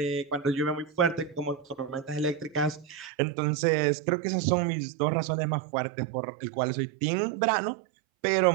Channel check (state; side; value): drops out; left; at 3.1 s